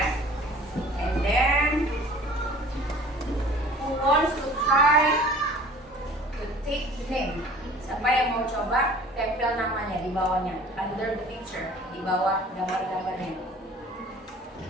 And then who wants to try to take the name? Siapa yang mau coba tempel namanya di bawahnya, under the picture, di bawah gambar-gambarnya. Di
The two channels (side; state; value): both; normal; correlation 0.48